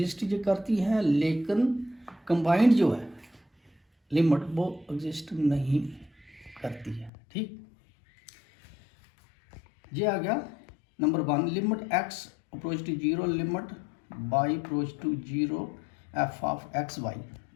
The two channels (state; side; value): drops out; right; at 7.1 s